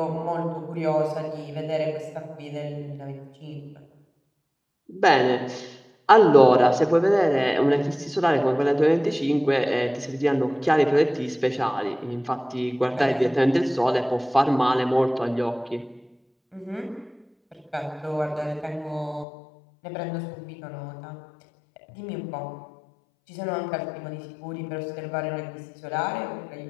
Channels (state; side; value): drops out; right; at 19.2 s